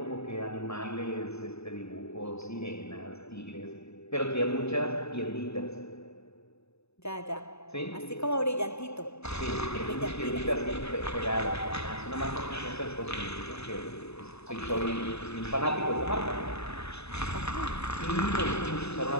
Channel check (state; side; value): late; right; 0.80 ms